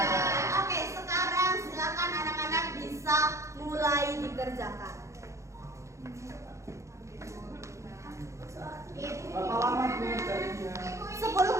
Oke, sekarang silakan anak-anak bisa mulai dikerjakan. Berapa lama pengerjaannya?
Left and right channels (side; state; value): left; late; 0.14 ms